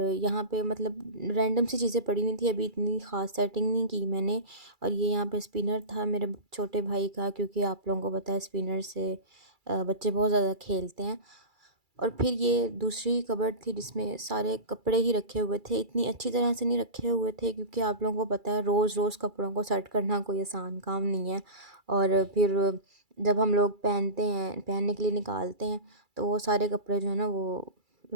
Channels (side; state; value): left; late; 2.3 ms